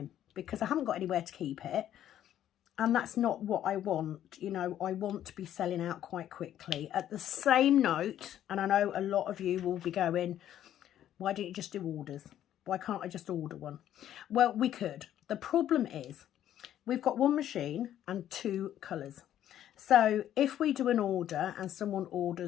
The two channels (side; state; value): right; quieter; 11.4 dB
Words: because I haven't got anywhere to keep it. And that's not what I want. You know, I want to be selling out quite quickly. At the same note, and I know a lot of you will be going, why don't you just do orders? Why can't I just order one? Well, we could. The problem is we've got 1 machine and 2 colours. So if we do an order and someone